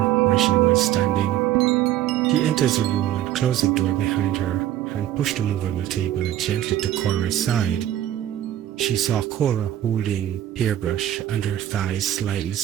where she was standing. She enters the room and closed the door behind her and pushed the movable table gently to Cora's side. She saw Cora holding hairbrush and her thighs slightly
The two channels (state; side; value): quieter; left; 12.3 dB